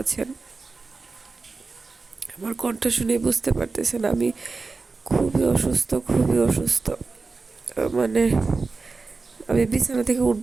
আছেন। আমার কণ্ঠ শুনে বুঝতে পারতেছেন আমি খুবই অসুস্থ, খুবই অসুস্থ। মানে আমি বিছানা থেকে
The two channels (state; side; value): quieter; left; 4.1 dB